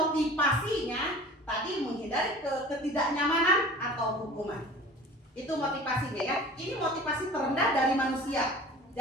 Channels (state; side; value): normal; both; correlation 0.42